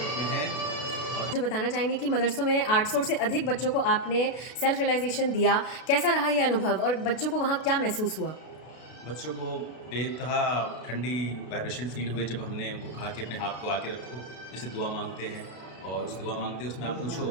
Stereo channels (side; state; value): right; late; 32 ms